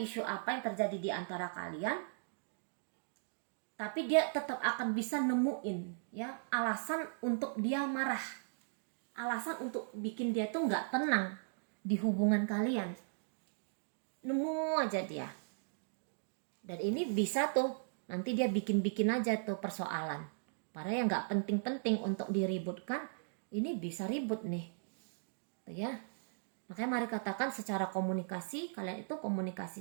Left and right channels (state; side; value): silent; left; digital silence